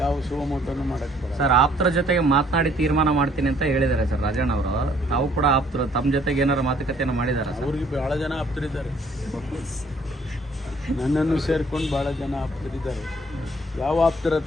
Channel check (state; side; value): normal; both; correlation 0.61